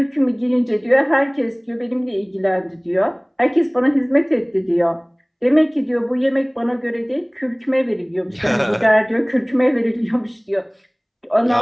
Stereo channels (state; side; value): identical; both; correlation 1.00